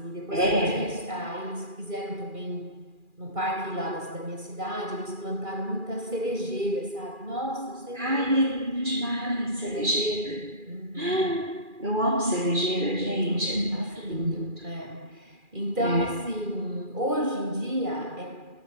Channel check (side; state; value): left; late; 2.4 ms